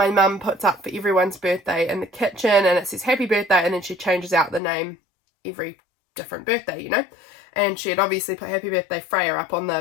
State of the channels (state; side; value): drops out; right; at 4.6 s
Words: mum puts up for everyone's birthday in the kitchen, and it says happy birthday, and then she changes out the name every different birthday, you know. And she had obviously put happy birthday Freya up on